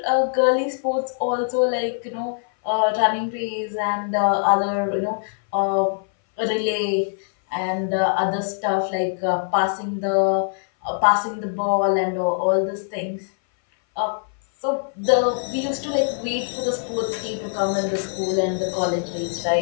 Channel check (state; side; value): silent; right; 59 dB below the other